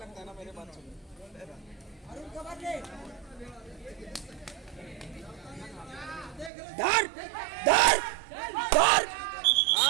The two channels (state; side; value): drops out; left; at 6.5 s